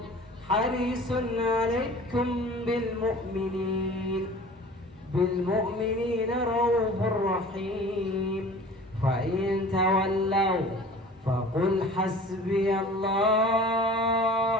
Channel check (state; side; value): normal; both; correlation 0.44